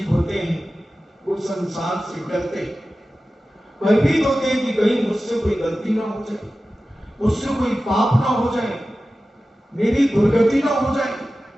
होते हैं वो संसार से डरते हैं, भयभीत होते हैं कि कहीं मुझसे कोई गलती ना हो जाए, मुझसे कोई पाप ना हो जाए, मेरी दुर्गति ना हो जाए।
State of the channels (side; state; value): both; normal; correlation 0.95